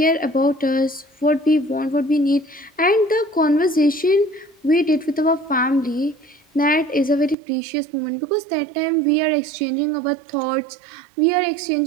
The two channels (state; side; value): drops out; left; at 7.4 s